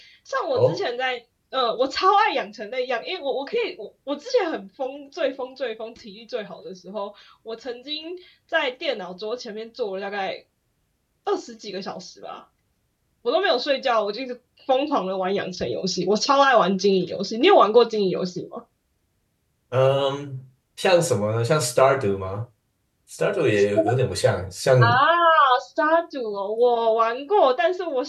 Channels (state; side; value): identical; both; correlation 1.00